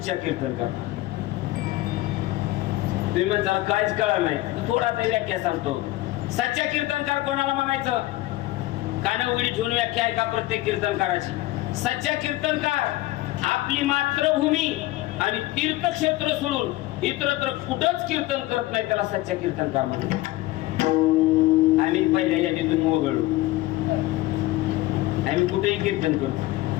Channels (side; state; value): right; quieter; 17.7 dB